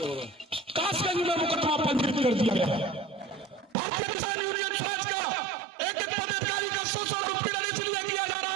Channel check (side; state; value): left; drops out; at 3.8 s